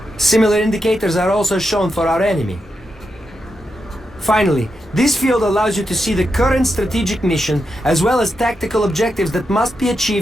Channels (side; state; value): both; normal; correlation 0.86